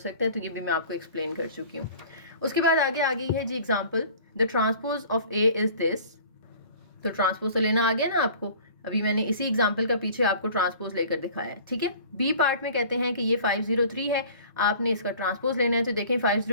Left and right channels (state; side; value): inverted; both; correlation -0.47